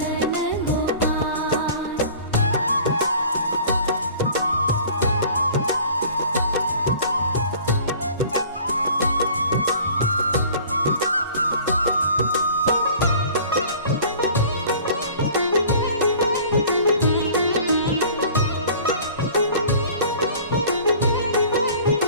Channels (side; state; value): both; inverted; correlation -0.47